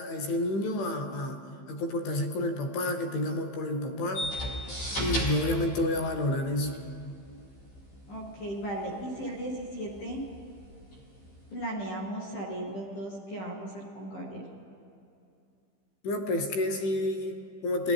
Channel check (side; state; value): right; late; 15 ms